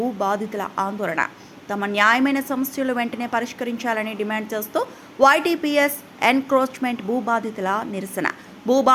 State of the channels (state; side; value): identical; both; correlation 1.00